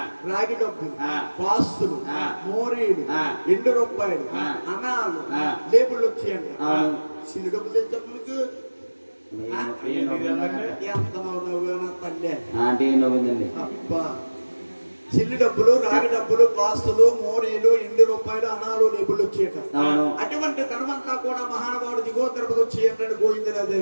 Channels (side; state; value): both; inverted; correlation -1.00